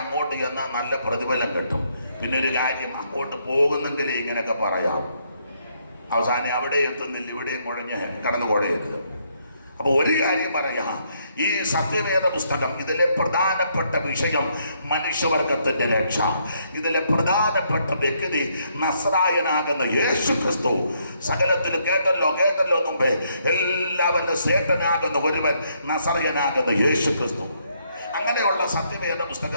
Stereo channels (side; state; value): both; inverted; correlation -0.73